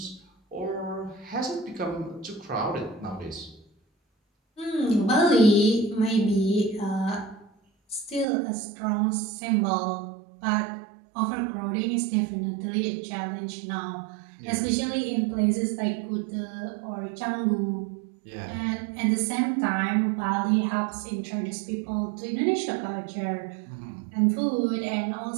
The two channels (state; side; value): drops out; left; at 8.2 s